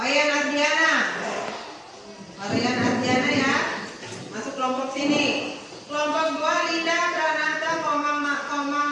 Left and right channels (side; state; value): both; identical; correlation 1.00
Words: Ardiana. Wayan Ardiana ya, masuk kelompok sini. Kelompok 2 Linda, Pranata, Komang